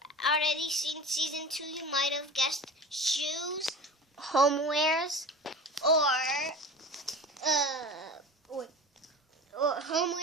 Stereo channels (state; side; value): normal; both; correlation 0.34